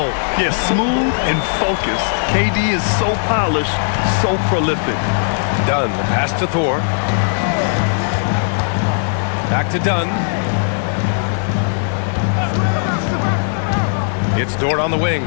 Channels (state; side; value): silent; right; digital silence